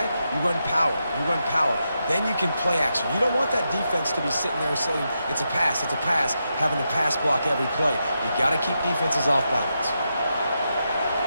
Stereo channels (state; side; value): inverted; both; correlation -0.85